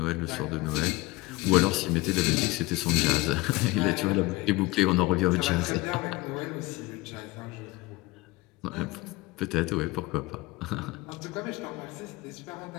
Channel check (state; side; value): quieter; right; 21.3 dB